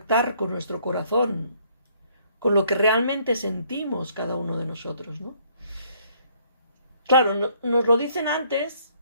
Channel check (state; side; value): inverted; both; correlation -0.65